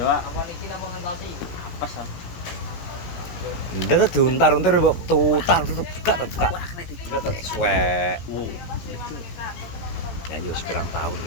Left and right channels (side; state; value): right; late; 17 ms